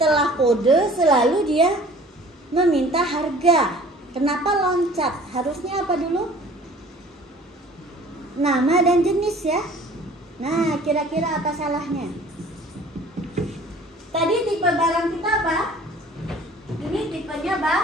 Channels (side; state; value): both; normal; correlation 0.49